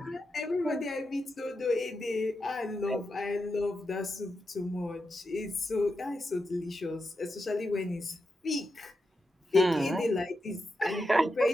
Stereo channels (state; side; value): normal; both; correlation 0.87